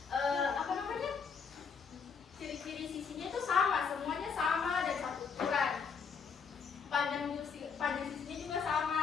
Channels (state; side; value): quieter; right; 6.0 dB